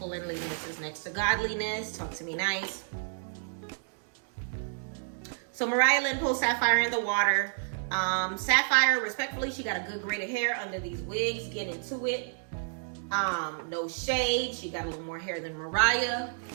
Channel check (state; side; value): silent; left; digital silence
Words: is next to godliness. Talk to me nice. So Mariah Lynn pulls Sapphire in the water. Sapphire, respectfully, she got a good grade of hair under these wigs. Get into it. No shade. She got a little more hair than Mariah.